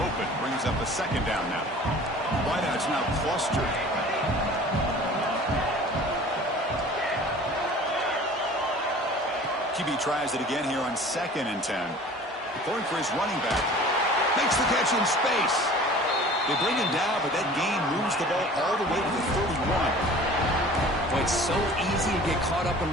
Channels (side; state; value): both; normal; correlation 0.45